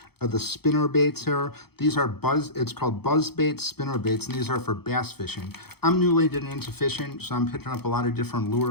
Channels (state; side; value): late; right; 0.96 ms